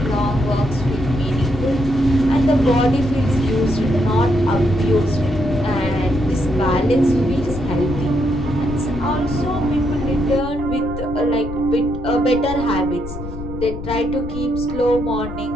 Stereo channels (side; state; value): left; noise; rumble, 10 dB below the sound